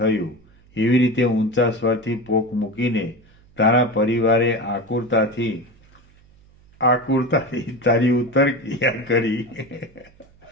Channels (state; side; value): noise; right; hum, 29 dB below the sound